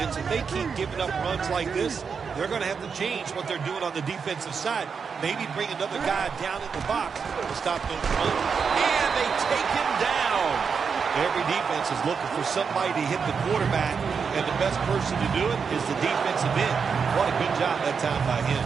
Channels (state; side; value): quieter; left; 5.9 dB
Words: If they keep giving up runs like this, they're going to have to change what they're doing on the defensive side. Maybe bring another guy down in the box to stop those runs. And they take him down. Every defense is looking for somebody to hit the quarterback, and the best person to do it is the defensive end. What a good job that time by him.